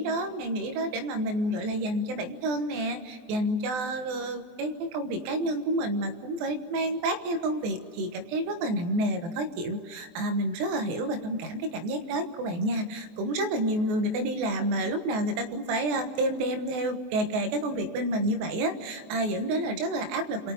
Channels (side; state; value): left; late; 23 ms